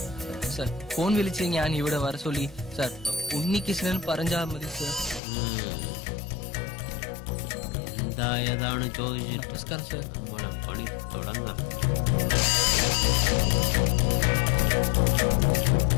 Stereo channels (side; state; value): right; drops out; at 5.2 s